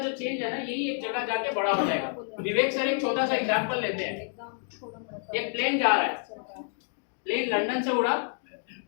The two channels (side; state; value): right; silent; 59 dB below the other